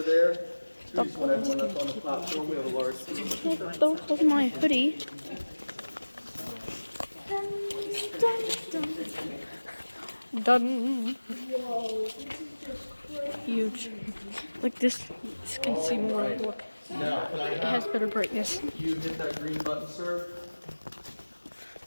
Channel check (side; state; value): both; inverted; correlation -1.00